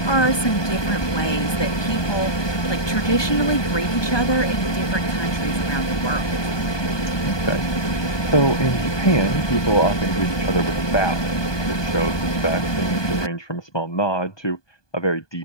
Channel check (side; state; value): right; late; 1.2 ms